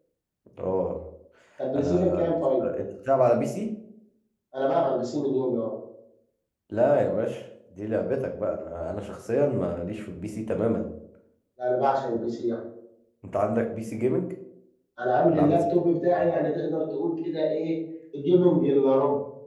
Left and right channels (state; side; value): identical; both; correlation 1.00